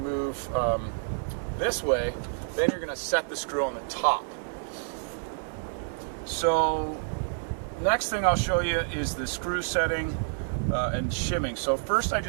this way, then you're going to set the screw on the top. So next thing I'll show you is the screw setting and shimming. So first I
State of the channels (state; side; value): silent; left; digital silence